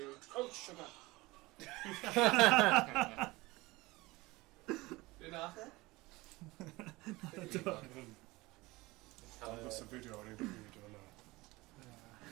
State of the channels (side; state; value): left; quieter; 21.4 dB